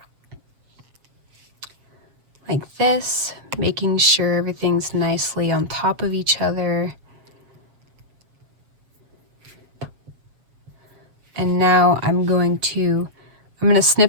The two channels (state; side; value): late; left; 7.4 ms